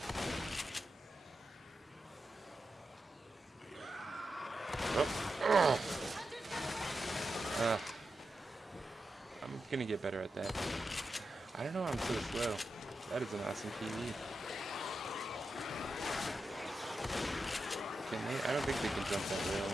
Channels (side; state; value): both; normal; correlation 0.89